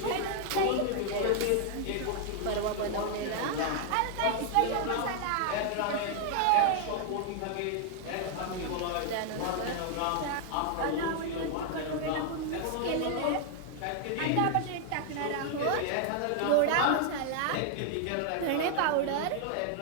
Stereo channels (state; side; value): different; both; correlation 0.00